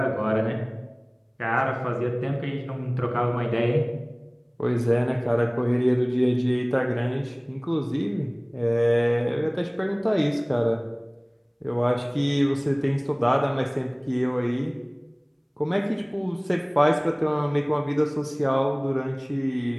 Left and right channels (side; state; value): both; identical; correlation 1.00